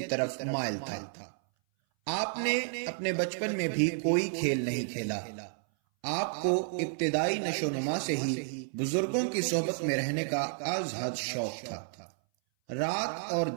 طرف مائل تھا۔ آپ نے اپنے بچپن میں بھی کوئی کھیل نہیں کھیلا۔ آپ کو ابتدائی نشو و نما سے ہی بزرگوں کی صحبت میں رہنے کا از حد شوق تھا۔ رات اور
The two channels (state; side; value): silent; left; 57 dB below the other